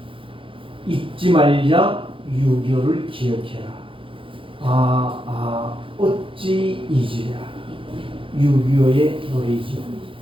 잊지 말자 6.25를 기억해라. 어찌 잊으랴. 6.25의 노래이죠.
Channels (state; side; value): late; left; 0.25 ms